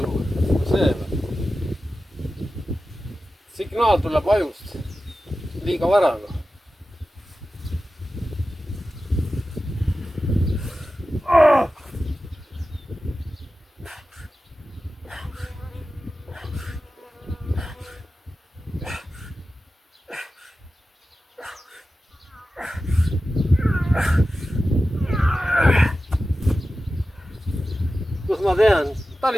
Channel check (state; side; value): normal; both; correlation 0.93